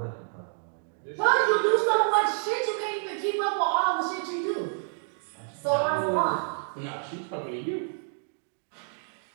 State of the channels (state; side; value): silent; left; 59 dB below the other